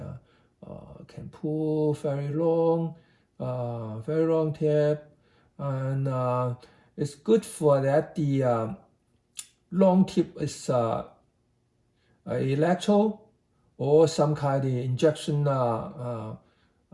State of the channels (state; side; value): identical; both; correlation 1.00